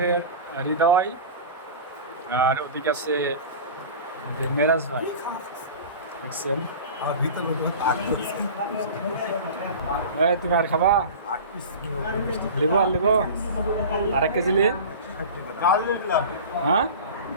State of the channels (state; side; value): inverted; both; correlation -0.34